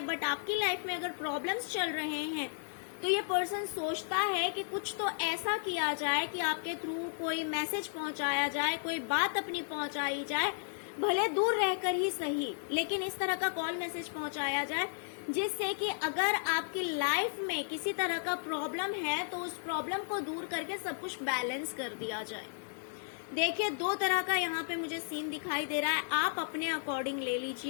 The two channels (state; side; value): silent; right; digital silence